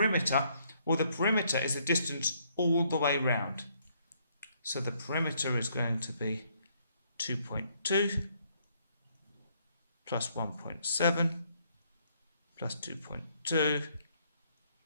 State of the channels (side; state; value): both; inverted; correlation -0.68